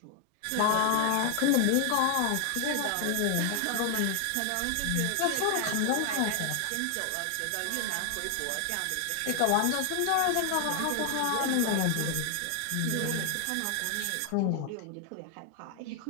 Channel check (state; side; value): different; both; correlation 0.00